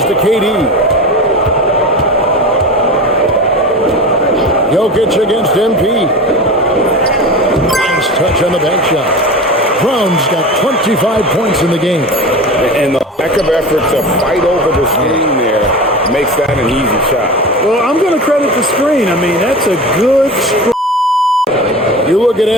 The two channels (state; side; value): normal; both; correlation 0.30